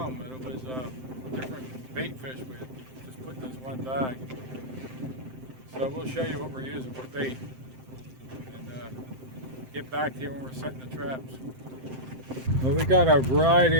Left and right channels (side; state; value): left; late; 7.7 ms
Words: and it was different bait fish we had just put in this one bag. So we'll show you what we're using for bait, and get back to you when we're setting the traps. Well, we got a